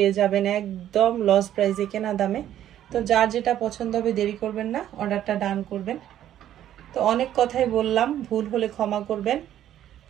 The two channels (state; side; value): quieter; left; 11.6 dB